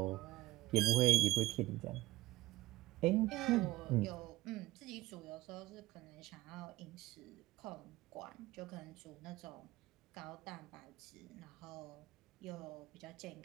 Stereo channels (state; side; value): quieter; left; 17.3 dB